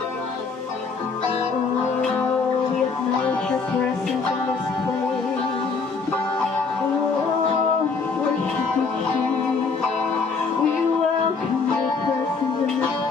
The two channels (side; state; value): right; quieter; 4.8 dB